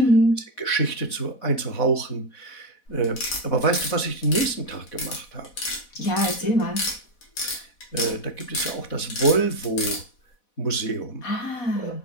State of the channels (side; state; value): right; late; 4.1 ms